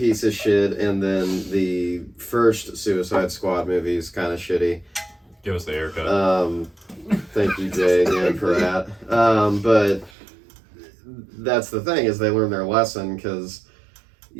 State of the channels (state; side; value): drops out; left; at 10.1 s